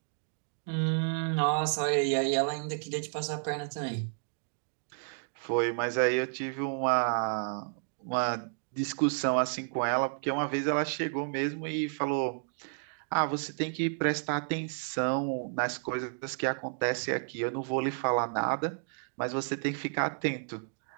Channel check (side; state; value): left; silent; digital silence